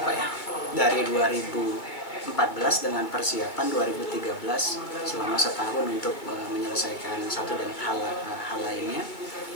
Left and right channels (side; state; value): right; late; 2.2 ms